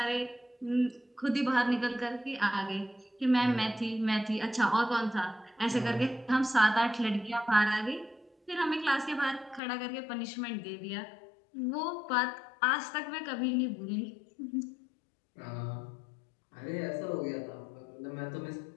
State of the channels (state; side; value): drops out; right; at 9.6 s